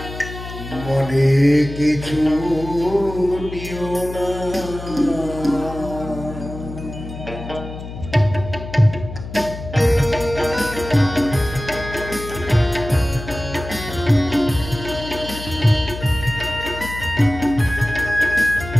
মনে কিছু নিও না।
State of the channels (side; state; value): left; noise; hum, 10 dB below the sound